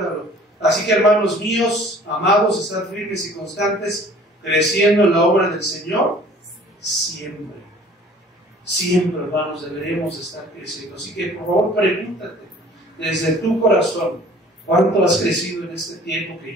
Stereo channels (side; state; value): both; normal; correlation 0.51